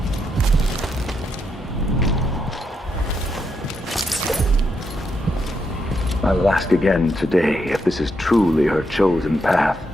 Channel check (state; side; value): normal; both; correlation 0.80